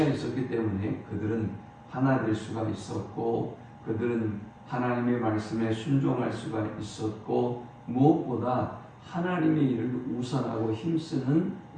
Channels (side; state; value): both; identical; correlation 1.00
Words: 있었기 때문에 그들은 하나 될 수가 있었고 그들은 하나님의 말씀에 순종할 수가 있었고 무엇보다 하나님의 일을 우선하고 힘쓰는